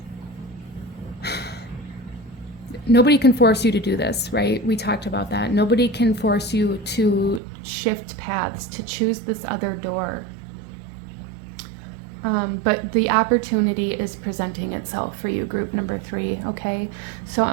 Nobody can force you to do this, right? We talked about that. Nobody can force you to shift paths, to choose this other door. But the opportunity is presenting itself for you, group number 3, okay? So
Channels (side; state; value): left; drops out; at 7.4 s